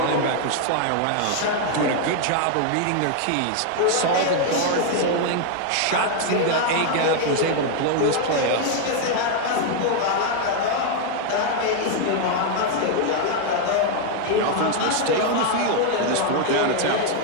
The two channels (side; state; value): both; different; correlation 0.00